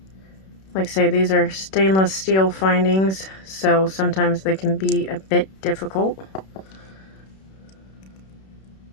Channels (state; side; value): late; right; 31 ms